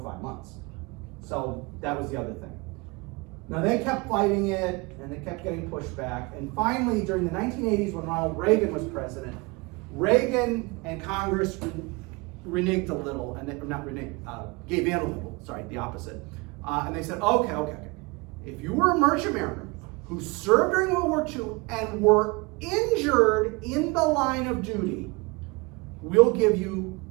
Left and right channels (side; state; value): left; quieter; 26.4 dB